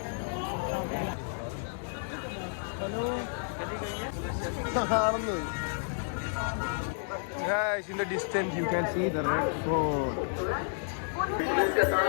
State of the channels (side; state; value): right; silent; digital silence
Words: Guys, in the distance you can see the red fort.